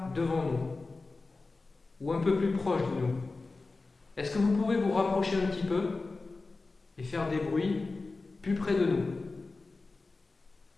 devant nous. Ou un peu plus proche de nous. Est-ce que vous pouvez vous rapprocher un petit peu et faire des bruits plus près de nous?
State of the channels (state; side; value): quieter; right; 3.7 dB